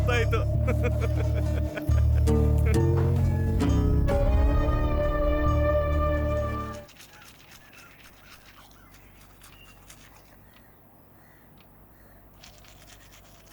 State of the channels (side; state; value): both; identical; correlation 1.00